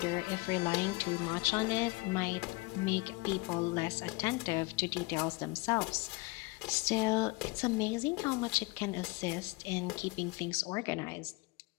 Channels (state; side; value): quieter; right; 25.5 dB